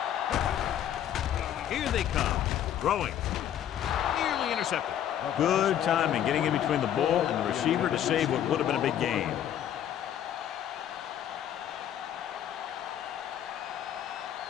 Here they come. Throwing. Nearly intercepted. Good timing getting in between the ball and the receiver to save what would have been a big gain.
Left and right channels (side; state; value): right; quieter; 10.5 dB